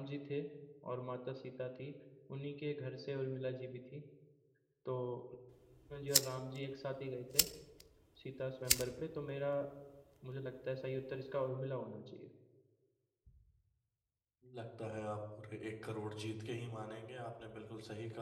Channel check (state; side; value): identical; both; correlation 1.00